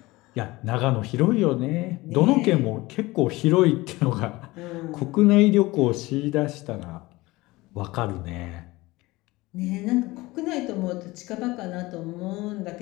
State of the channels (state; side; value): quieter; right; 20.6 dB